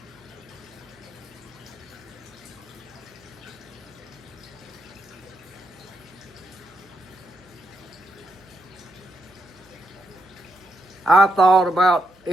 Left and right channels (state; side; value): noise; right; hum, 29 dB below the sound